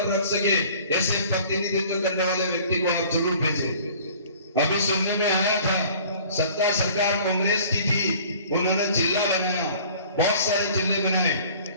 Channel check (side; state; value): both; inverted; correlation -0.50